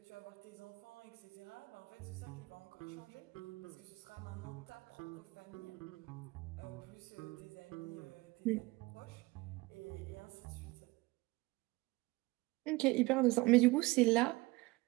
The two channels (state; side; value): quieter; left; 22.2 dB